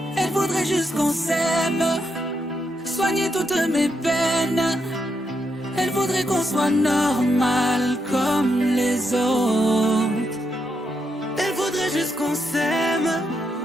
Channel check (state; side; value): normal; both; correlation 0.81